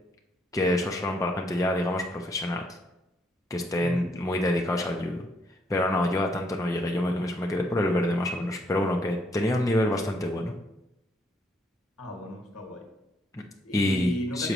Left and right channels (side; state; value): both; normal; correlation 0.72